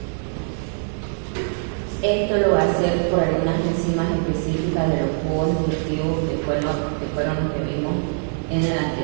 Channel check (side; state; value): left; silent; digital silence